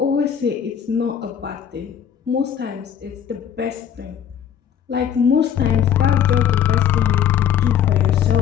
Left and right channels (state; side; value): quieter; right; 8.9 dB